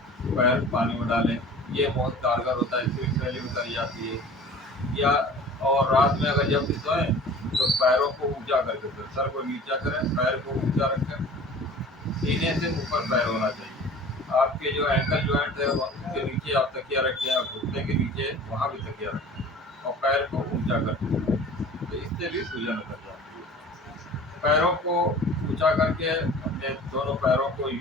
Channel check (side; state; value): both; normal; correlation 0.43